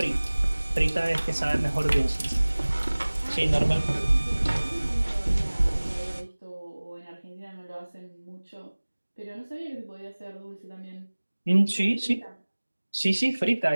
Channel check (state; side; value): inverted; both; correlation -1.00